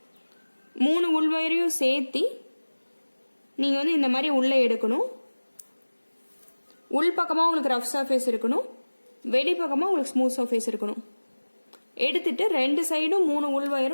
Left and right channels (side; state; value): both; inverted; correlation -1.00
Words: 3 உள் ஒயரையும் சேர்த்தி நீங்கள் வந்து இந்த மாதிரி உள்ளே எடுக்கணும். உள் பக்கமாக உங்களுக்கு ரஃப் சர்ஃபேஸ் இருக்கணும், வெளி பக்கமாக உங்களுக்கு ஸ்மூத் சர்ஃபேஸ் இருக்கணும். எடுத்துட்டு 2 சைடும் 3 உள்